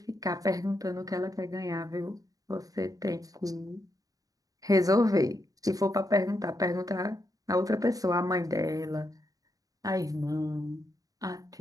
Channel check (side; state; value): left; late; 0.17 ms